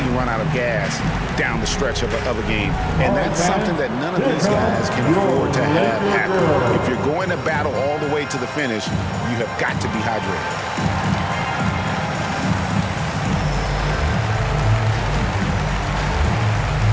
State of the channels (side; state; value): both; identical; correlation 1.00